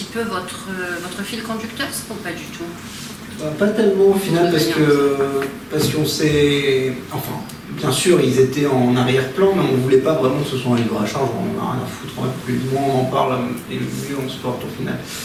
peu votre fil conducteur, ou pas du tout? Pas tellement au final parce qu'on s'est... Enfin, bien sûr, ils étaient en arrière-plan, mais on ne voulait pas vraiment que ce soit un livre à charge, on n'a rien à foutre, plus moins on en parle, et mieux on se porte au final.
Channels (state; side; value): identical; both; correlation 1.00